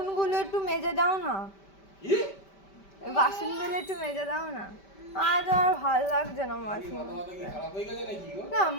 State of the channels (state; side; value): late; right; 5.1 ms